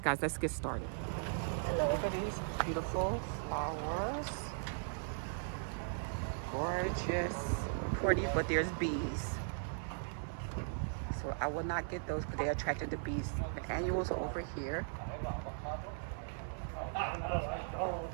guys, let's get started. Look at these beautiful flowers. Gorgeous, pretty, but there's bees. So I will not get those because they attracted the bees. The annuals are over here.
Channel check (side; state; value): left; silent; 52 dB below the other